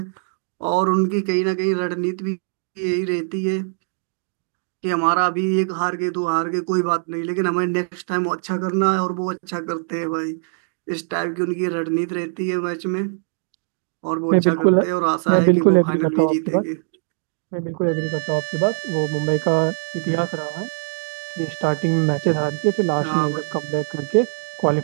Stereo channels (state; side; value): silent; left; digital silence